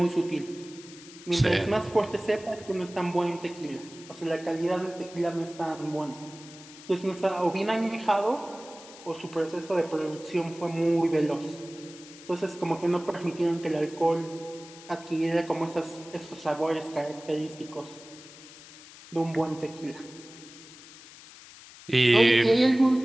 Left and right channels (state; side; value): noise; left; hiss, 18 dB below the sound